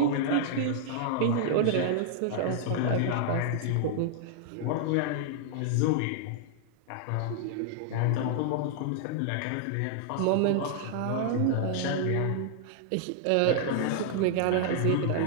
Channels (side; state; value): both; different; correlation -0.01